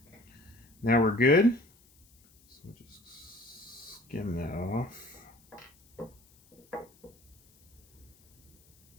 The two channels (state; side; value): noise; left; hiss, 30 dB below the sound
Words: now we're good. So we'll just skim that off.